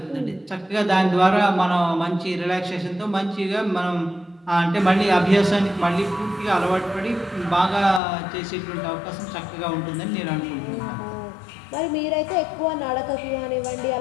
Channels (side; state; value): right; drops out; at 8.0 s